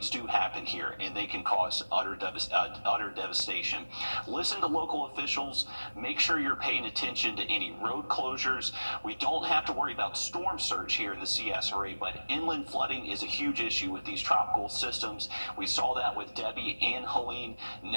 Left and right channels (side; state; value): both; inverted; correlation -1.00